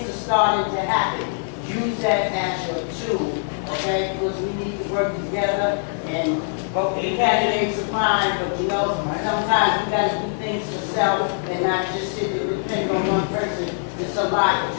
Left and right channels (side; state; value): right; silent; digital silence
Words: are starting to happen. Use that as your tool, okay? Because we need to work together, and both the candidates are fine, but you know, sometimes we gotta do things for self and not just sit and depend on one person. It's a lot